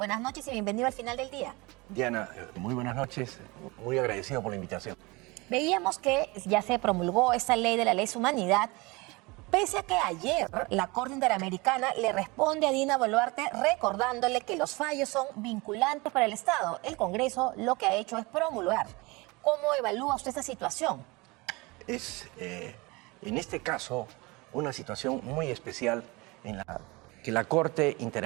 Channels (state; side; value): quieter; left; 24.9 dB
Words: noches y bienvenido al final del día. Diana, muy buenas noches, muy agradecido por la invitación. Veíamos que ya se promulgó esta ley de la lesa humanidad, pese a que ayer la Corte Interamericana le responde a Dina Boluarte recordándole que los fallos son vinculantes para el Estado. El Congreso lo que ha hecho es promulgar. ¿Cómo evalúa usted esta situación? Es, en este caso, una situación muy especial en la que la Corte